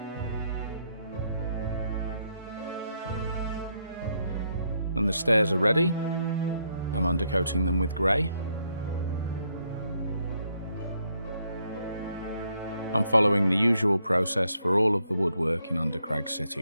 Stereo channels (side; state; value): both; inverted; correlation -0.75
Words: When the stairs are ready, I'm undercoating them with grey. I'm following the usual process for all of the woodwork in Undercrag